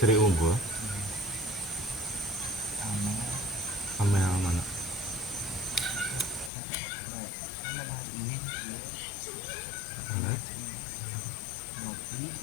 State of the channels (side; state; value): right; drops out; at 6.5 s